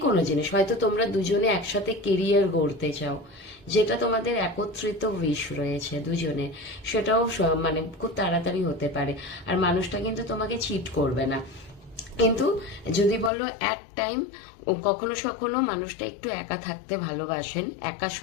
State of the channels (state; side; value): drops out; right; at 13.3 s